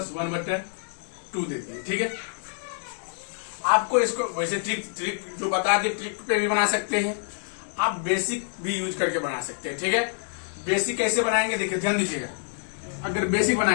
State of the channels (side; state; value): right; silent; 55 dB below the other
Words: 1/2 देते हैं, ठीक है। आपको इसको वैसे ट्रिक जो बता दी, ट्रिक पे भी बना सकते हैं, आप बेसिक भी यूज करके बना सकते हैं, ठीक है। बेसिक कैसे बनाएंगे देखिए, ध्यान दीजिएगा। अगर बेसिक